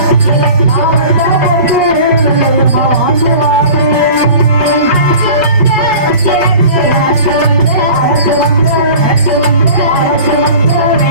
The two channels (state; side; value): late; left; 5.6 ms